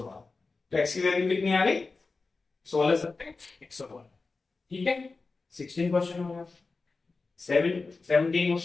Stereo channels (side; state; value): right; quieter; 4.0 dB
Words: तो x की वैल्यू कितनी आ गई 16 7 112। ठीक है, 16 क्वेश्चन हो गया। 17